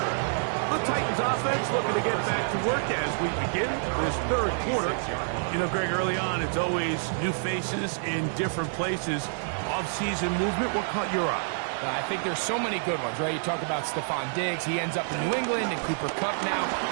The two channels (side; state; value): left; silent; digital silence